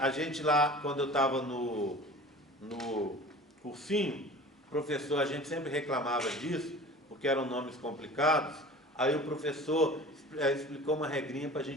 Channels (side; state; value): both; normal; correlation 0.41